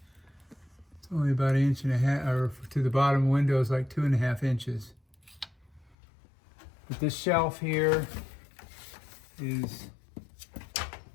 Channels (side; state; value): right; drops out; at 6.0 s